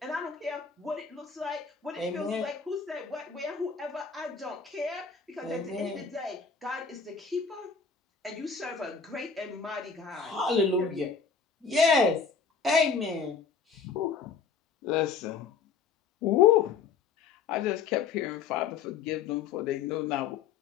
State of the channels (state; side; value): quieter; right; 5.7 dB